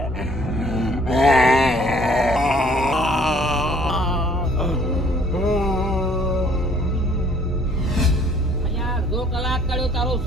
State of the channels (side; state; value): both; normal; correlation 0.59